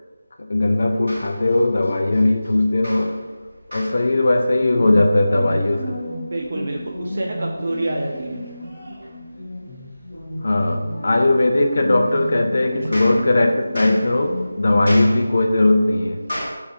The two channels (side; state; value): both; inverted; correlation -0.96